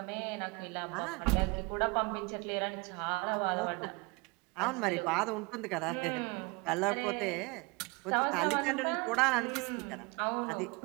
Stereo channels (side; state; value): left; quieter; 27.9 dB